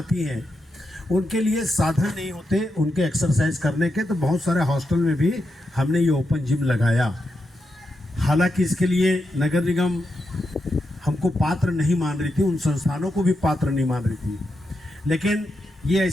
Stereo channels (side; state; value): both; normal; correlation 0.86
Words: हैं उनके लिए साधन नहीं होते उनके एक्सरसाइज करने के, तो बहुत सारे हॉस्टल में भी हमने ये ओपन जिम लगाया। हालांकि इसके लिए नगर निगम हमको पात्र नहीं मान रही थी, उन संस्थानों को भी पात्र नहीं मान रही थी, लेकिन ये